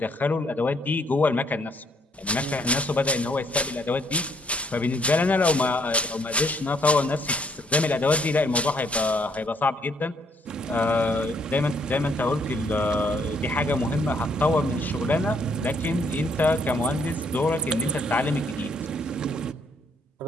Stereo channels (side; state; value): both; normal; correlation 0.68